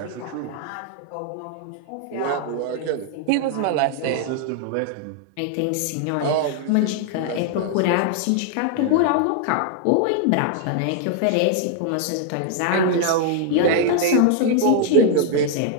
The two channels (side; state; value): both; different; correlation 0.00